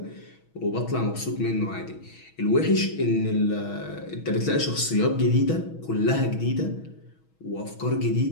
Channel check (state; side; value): late; right; 6.3 ms